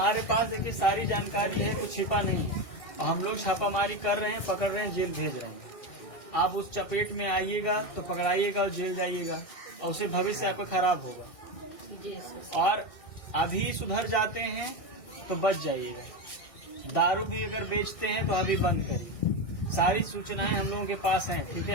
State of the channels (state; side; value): late; right; 1.6 ms